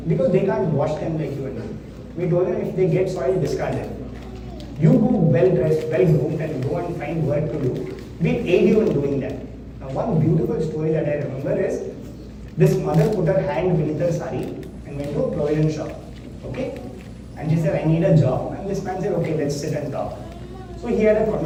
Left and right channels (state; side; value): identical; both; correlation 1.00